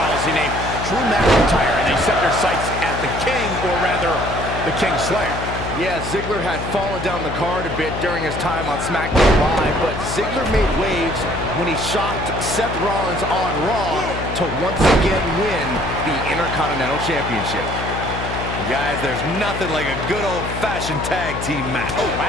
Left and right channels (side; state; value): left; noise; hum, 6 dB below the sound